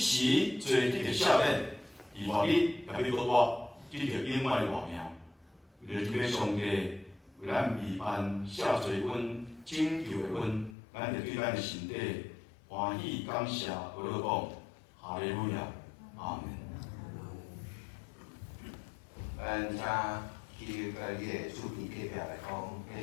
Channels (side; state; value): right; drops out; at 10.8 s